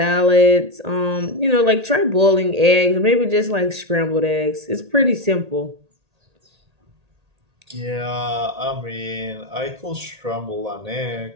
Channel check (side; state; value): left; late; 1.8 ms